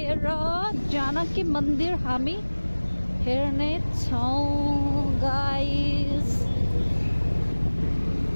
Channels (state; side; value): inverted; both; correlation -1.00